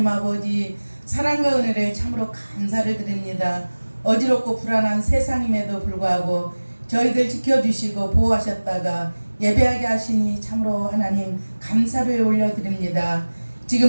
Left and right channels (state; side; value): inverted; both; correlation -1.00